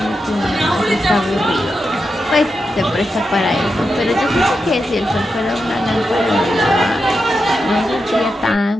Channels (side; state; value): both; normal; correlation 0.88